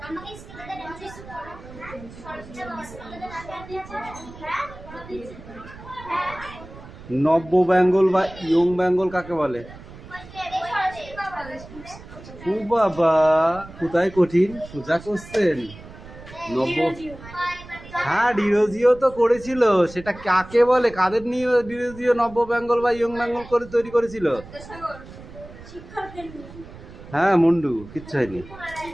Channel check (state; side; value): noise; right; rumble, 17 dB below the sound